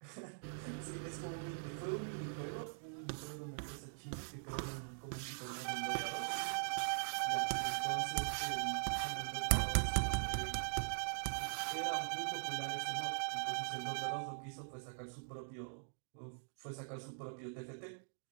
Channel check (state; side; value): silent; left; digital silence